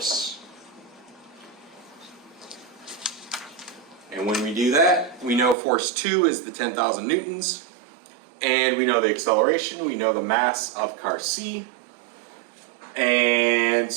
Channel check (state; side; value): drops out; left; at 5.6 s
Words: And when we do that, we know force 2 is the 10,000 newtons, and we know the acceleration, we know the mass of car C, and